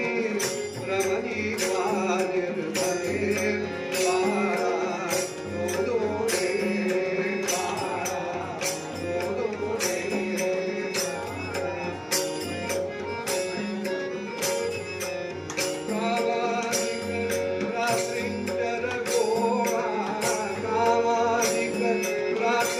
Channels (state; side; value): identical; both; correlation 1.00